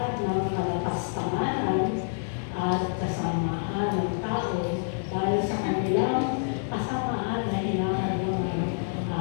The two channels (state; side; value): silent; right; digital silence